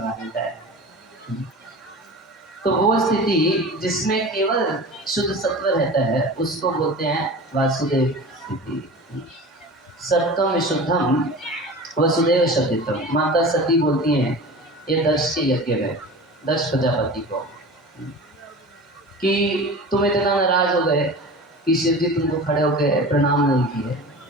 देता है। तो वो स्थिति जिसमें केवल शुद्ध सत्व रहता है उसको बोलते हैं वासुदेव स्थिति। सत्वम विशुद्धम वसुदेव शब्दितम। माता सती बोलती हैं ये दक्ष के यज्ञ में, दक्ष प्रजापति को, कि तुम इतना नाराज हो गए कि शिव जी तुमको खड़े होकर प्रणाम नहीं किए,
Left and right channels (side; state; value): both; normal; correlation 0.35